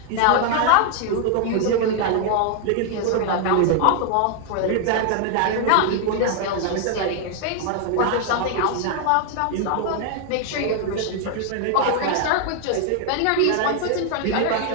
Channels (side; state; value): both; different; correlation 0.00